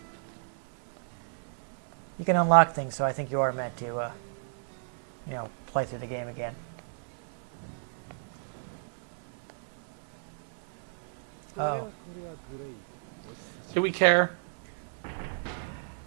You can unlock things, so I think you are meant to, play through the game again. Oh. Do we care?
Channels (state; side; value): silent; left; digital silence